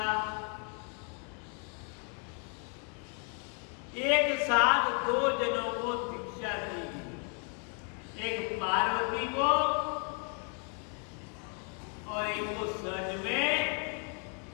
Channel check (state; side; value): quieter; right; 38.4 dB